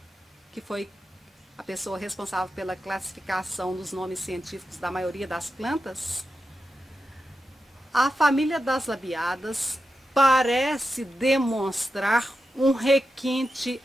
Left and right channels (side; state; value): both; normal; correlation 0.89